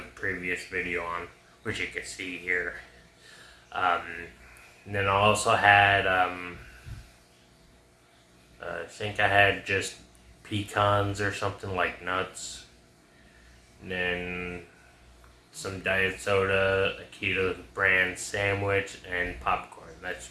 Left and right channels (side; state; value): both; identical; correlation 1.00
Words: previous video on, which you can see here. And then I also had, I think I had just pecans or something, like nuts, and then some diet soda, a keto brand sandwich, and popcorn. That's